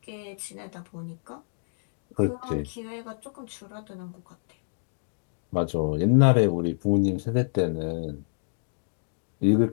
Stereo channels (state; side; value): silent; right; digital silence